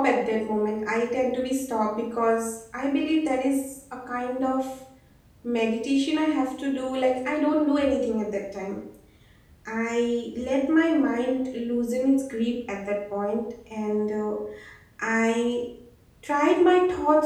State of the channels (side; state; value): both; identical; correlation 1.00